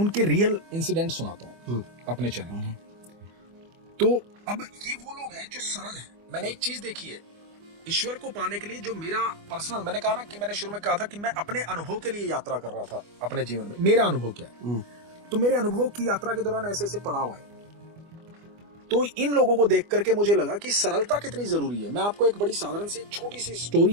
रियल इंसिडेंट सुनाता हूं अपने चैनल में। तो अब ये वो लोग हैं जो सरल हैं। मैंने एक चीज देखी है, ईश्वर को पाने के लिए जो मेरा पर्सनल, मैंने कहा ना कि मैंने शुरू में कहा था कि मैं अपने अनुभव के लिए यात्रा कर रहा था अपने जीवन में। मेरा अनुभव क्या है, तो मेरे अनुभव की यात्रा के दौरान ऐसे ऐसे पड़ाव आए, तो इन लोगों को देख करके मुझे लगा कि सरलता कितनी जरूरी है। मैं आपको एक बड़ी साधारण सी छोटी सी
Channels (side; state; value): left; late; 25 ms